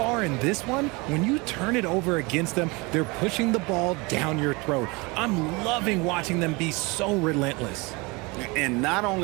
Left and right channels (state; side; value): quieter; left; 26.4 dB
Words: in this one, when you turn it over against them, they're pushing the ball down your throat. I'm loving watching them be so relentless. And not